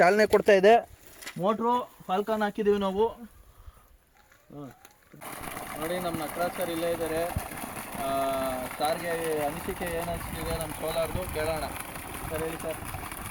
ಕೊಡ್ತಾಯಿದೆ. ಮೋಟ್ರು ಫಾಲ್ಕಾನ್ ಹಾಕಿದ್ದೀವಿ ನಾವು. ನೋಡಿ ನಮ್ಮ ನಟರಾಜ್ ಸರ್ ಇಲ್ಲೇ ಇದ್ದಾರೆ. ಸಾರ್ಗೆ ಅನಿಸಿಕೆ ಏನು ಅನಿಸ್ತಿದೆ ನಮ್ಮ ಸೋಲಾರ್ದು ಕೇಳೋಣ. ಸರ್ ಹೇಳಿ ಸರ್.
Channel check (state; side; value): identical; both; correlation 1.00